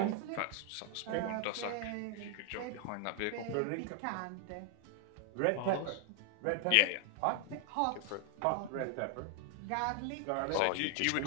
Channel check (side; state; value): both; different; correlation 0.00